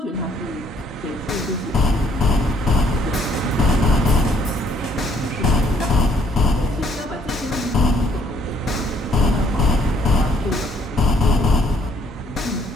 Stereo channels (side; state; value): both; normal; correlation 0.64